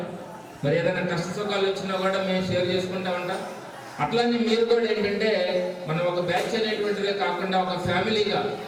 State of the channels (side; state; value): both; identical; correlation 1.00